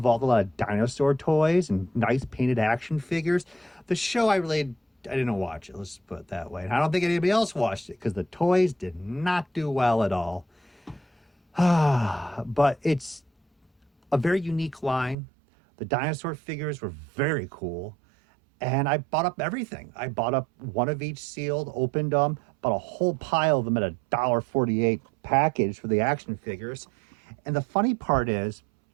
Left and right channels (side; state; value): left; drops out; at 15.2 s